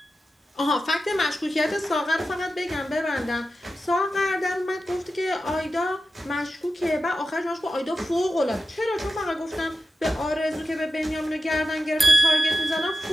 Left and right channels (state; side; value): normal; both; correlation 0.92